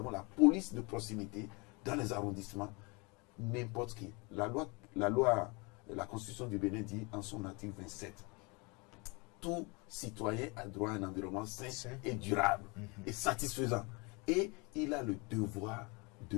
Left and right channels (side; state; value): right; quieter; 29.0 dB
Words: la police de proximité dans les arrondissements, n'importe qui. La Constitution du Bénin dit en son article 27, tout citoyen a droit à un environnement sain et durable et satisfaisant. Et il a le devoir